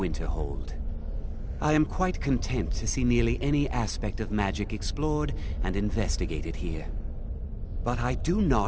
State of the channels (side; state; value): both; identical; correlation 1.00